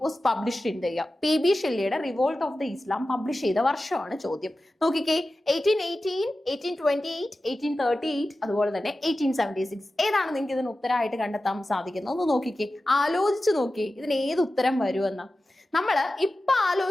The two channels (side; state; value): both; normal; correlation 0.94